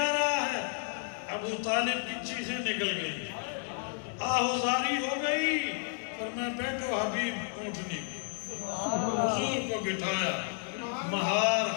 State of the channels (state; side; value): silent; right; digital silence